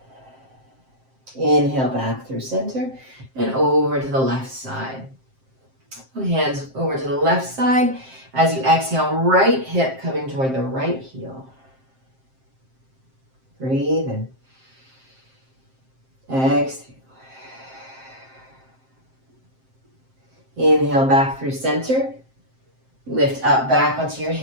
Inhale back through center and over to the left side. Hands over to the left side. As you exhale, right hip coming toward the right heel. Breathe in. Exhale. Inhale back through center. Lift up back onto your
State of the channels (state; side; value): late; left; 7.6 ms